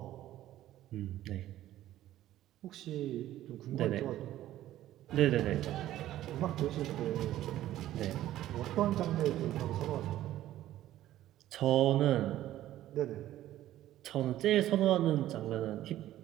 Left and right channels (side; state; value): left; quieter; 13.7 dB